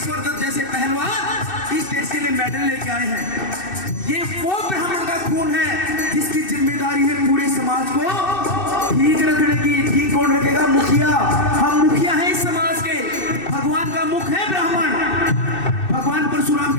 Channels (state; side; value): late; right; 2.6 ms